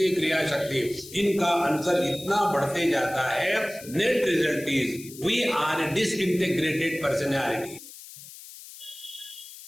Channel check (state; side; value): noise; left; hiss, 16 dB below the sound